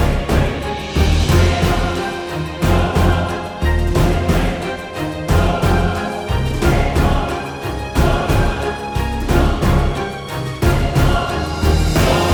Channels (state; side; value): identical; both; correlation 1.00